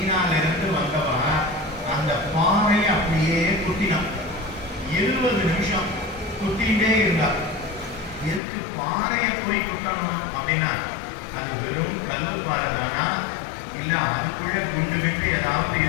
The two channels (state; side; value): drops out; right; at 8.4 s